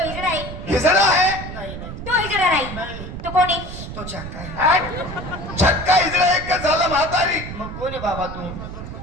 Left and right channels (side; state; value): right; noise; rumble, 9 dB below the sound